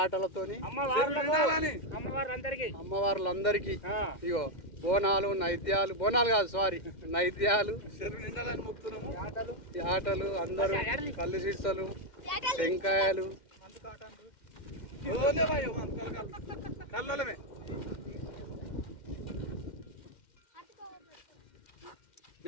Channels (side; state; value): right; late; 2.1 ms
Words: అమ్మవార్లందరికీ ఇగో బోనాలు నైద్యాలు, బోనాలు కాదు సారీ నైద్యాలు, యాటలు అందరూ కళ్ళు సీసలు టెంకాయలు